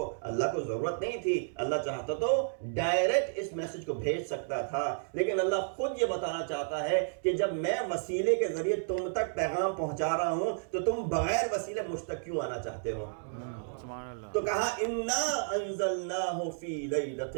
اللہ کو ضرورت نہیں تھی. اللہ چاہتا تو ڈائریکٹ اس میسج کو بھیج سکتا تھا, لیکن اللہ خود یہ بتانا چاہتا ہے کہ جب میں وسیلے کے ذریعے تم تک پیغام پہنچا رہا ہوں تو تم بغیر وسیلے مجھ تک کیوں آنا چاہتے ہو. تو کہا انا انزلناہ فی لیلۃ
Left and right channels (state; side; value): silent; left; digital silence